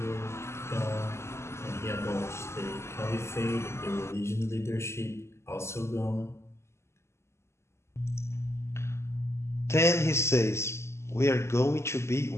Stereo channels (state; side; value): late; right; 0.13 ms